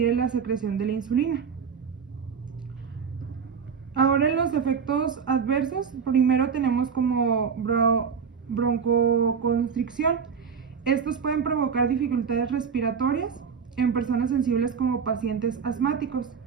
en la secreción de la insulina. Ahora en los efectos adversos, primero tenemos como broncoconstricción. Estos pueden provocar dificultades respiratorias en personas sensibles como pacientes asmáticos.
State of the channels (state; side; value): quieter; left; 6.4 dB